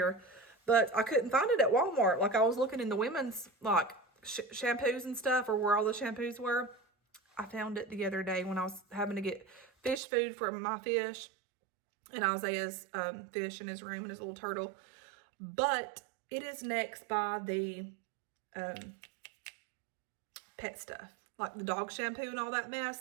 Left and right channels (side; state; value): left; drops out; at 10.0 s